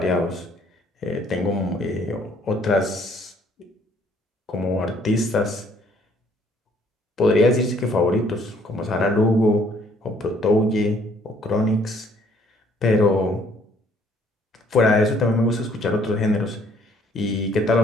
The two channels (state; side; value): normal; both; correlation 0.62